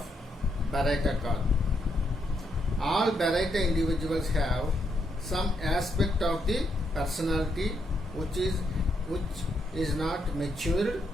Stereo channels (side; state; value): both; normal; correlation 0.78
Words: Baraita call. All Baraita individuals have some aspect of the personality which is not matured